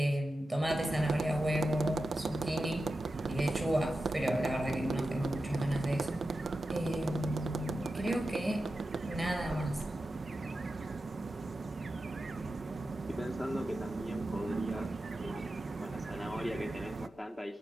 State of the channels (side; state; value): both; normal; correlation 0.92